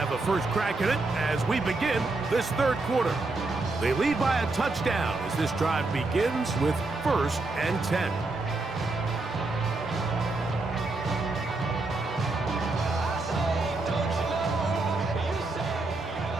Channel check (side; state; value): left; quieter; 3.3 dB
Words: a first crack at it as we begin this third quarter. They lead by a touchdown as this drive begins with 1st and 10.